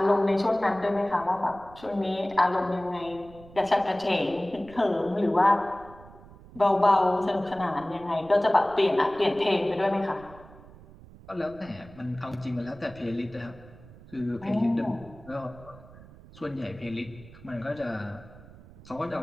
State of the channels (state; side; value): noise; right; rumble, 20 dB below the sound